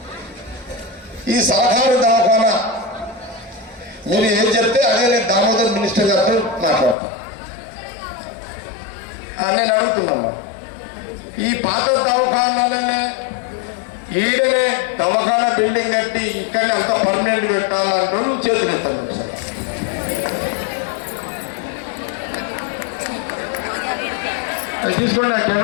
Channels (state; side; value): drops out; right; at 7.0 s